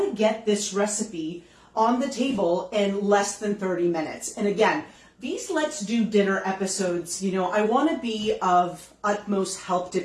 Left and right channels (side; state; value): both; identical; correlation 1.00